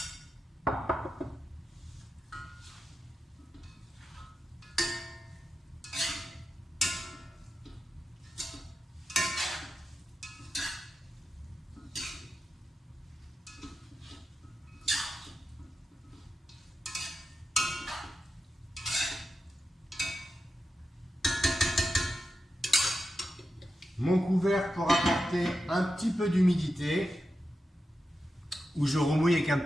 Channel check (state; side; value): normal; both; correlation 0.90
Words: Mon couvercle pour apporter un petit peu d'humidité, où je remouille avec un